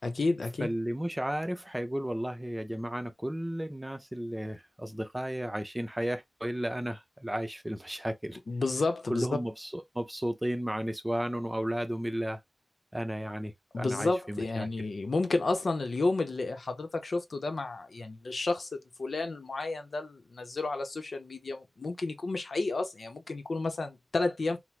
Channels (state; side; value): normal; both; correlation 0.97